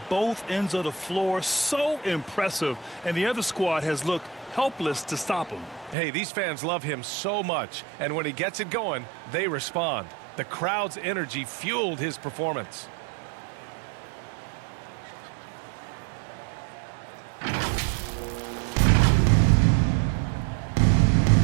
both ends of the floor. So impressive, and the other squad has looked helpless to stop him. Hey, these fans love him so much, and when he gets it going, they respond. The crowd's energy fueled his performance.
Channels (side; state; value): left; drops out; at 6.0 s